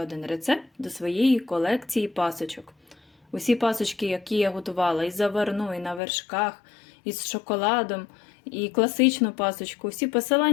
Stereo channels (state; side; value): drops out; right; at 6.0 s